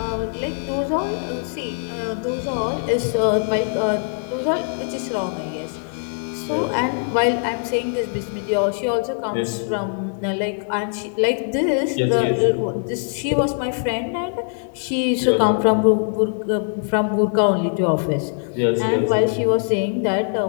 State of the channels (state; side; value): silent; right; 64 dB below the other